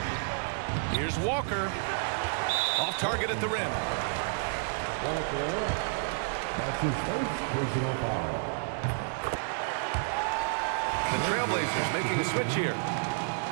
Here's Walker. Off target at the rim. That's his first personal foul. The Trailblazers making a switch here.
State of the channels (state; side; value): silent; left; 58 dB below the other